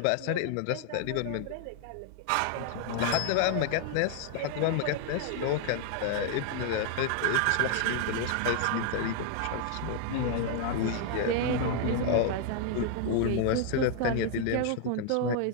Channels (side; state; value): both; different; correlation 0.00